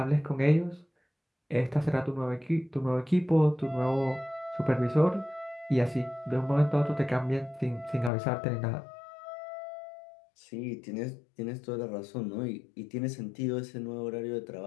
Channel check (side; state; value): right; drops out; at 8.1 s